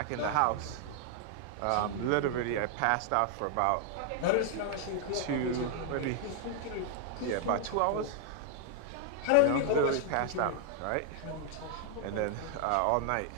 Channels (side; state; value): both; different; correlation 0.00